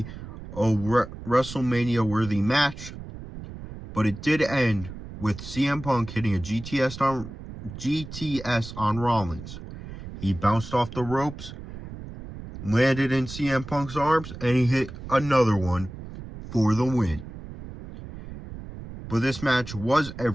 a WrestleMania worthy match. But it did end with CM Punk hitting a GTS on Rollins. He bounced off the ropes, landed in CM Punk's arms, and he hit another one for the win. But this match was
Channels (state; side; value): noise; right; rumble, 12 dB below the sound